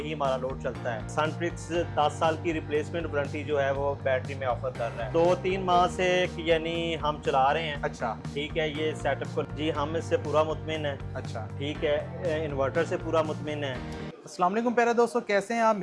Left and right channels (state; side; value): identical; both; correlation 1.00